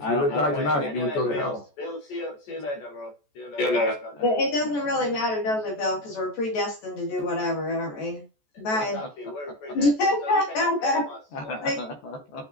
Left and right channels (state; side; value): late; right; 14 ms